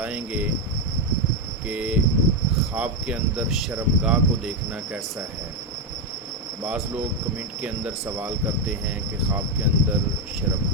گے کہ خواب کے اندر شرمگاہ کو دیکھنا کیسا ہے۔ بعض لوگ کمنٹ کے اندر سوال کرتے ہیں کہ خواب کے اندر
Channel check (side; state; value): both; normal; correlation 0.06